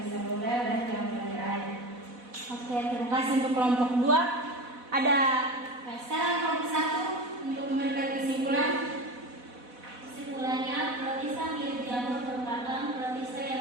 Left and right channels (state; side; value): late; left; 4.1 ms